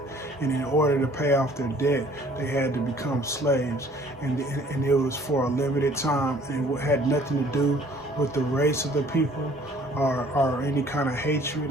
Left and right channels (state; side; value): normal; both; correlation 0.55